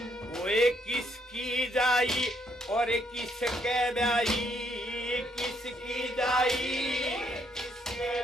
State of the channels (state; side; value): normal; both; correlation 0.72